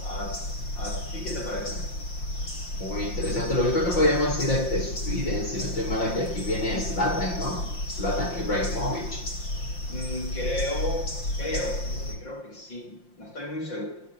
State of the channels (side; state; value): right; late; 5.7 ms